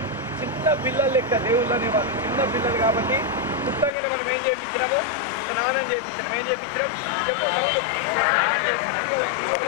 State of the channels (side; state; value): right; drops out; at 3.9 s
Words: చిన్న పిల్లలు లెక్క దేవుళ్ళు అనేవాళ్ళు, చిన్న పిల్లలు కాబట్టి పుట్టంగానే మనం ఏం చేయించినాము? స్నానం చేయించినాం. ఏం చేయించినాం?